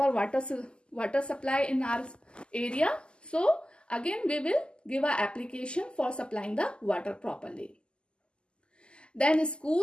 water supply in our area, so again we will give an application for supplying the water properly. Then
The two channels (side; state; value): right; late; 0.049 ms